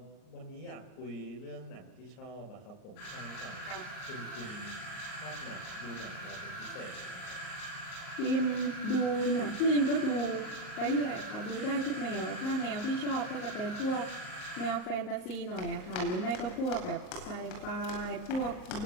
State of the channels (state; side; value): late; right; 38 ms